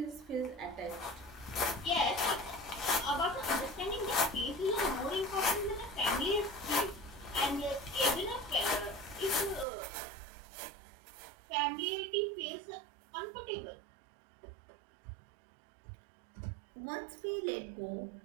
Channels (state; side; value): drops out; left; at 9.7 s